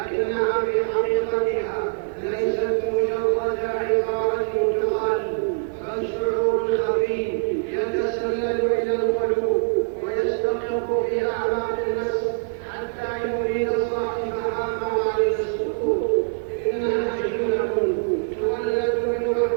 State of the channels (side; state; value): left; silent; digital silence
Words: ليست مجرد عبارة تقال، بل شعور خفي يتسلل إلى القلوب ويستقر في أعماق النفس حتى يريد صاحبها موارد السكوت. إنها جملة تولد من